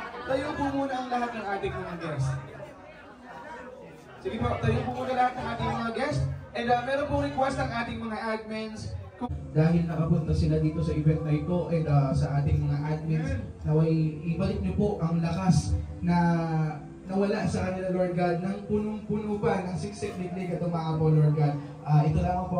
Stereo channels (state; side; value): identical; both; correlation 1.00